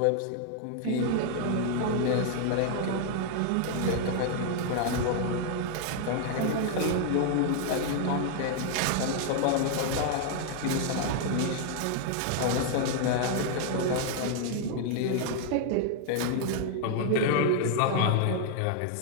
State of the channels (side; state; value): both; different; correlation 0.00